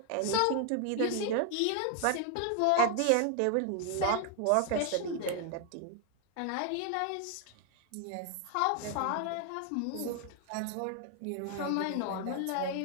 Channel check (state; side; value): different; both; correlation 0.00